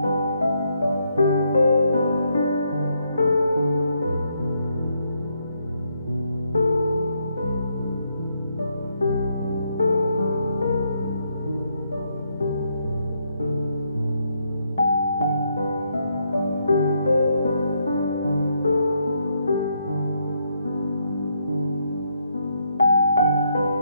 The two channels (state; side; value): inverted; both; correlation -0.76